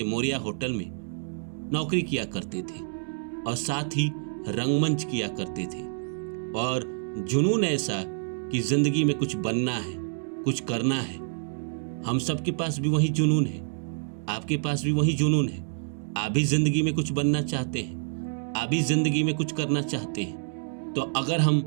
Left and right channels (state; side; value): silent; left; digital silence